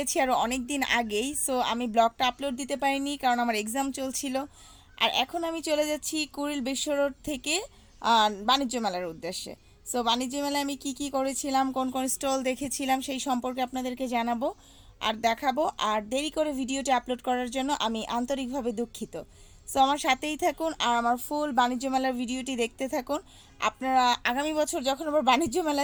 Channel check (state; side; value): identical; both; correlation 1.00